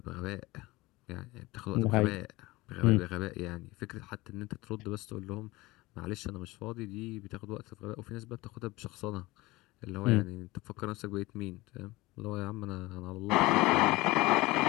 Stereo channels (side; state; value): right; quieter; 20.6 dB